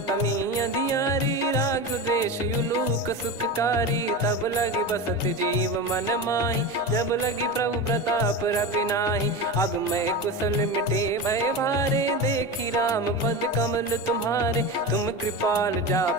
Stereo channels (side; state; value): both; normal; correlation 0.24